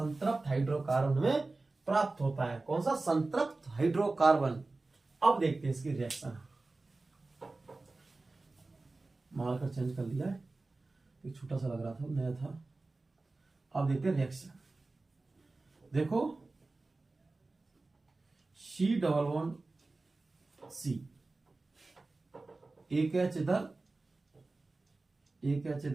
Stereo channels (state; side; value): quieter; left; 3.3 dB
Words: हाइड्रोकार्बन हमें प्राप्त होता है। कौन सा? संतृप्त हाइड्रोकार्बन। अब देखते हैं इसकी रिएक्शन। मार्कर चेंज कर लिया है, एक छोटा सा लग रहा था, नया था। अब देखते हैं रिएक्शन। देखो, C डबल बॉन्ड C, एक H इधर, एक H